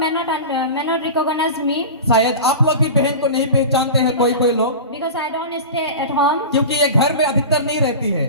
not recognize me शायद आप लोग भी बहन को नहीं पहचानते हैं कोई लोग, because I don't stay at home, क्योंकि ये घर में अधिकतर नहीं रहती है,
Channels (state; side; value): inverted; both; correlation -0.30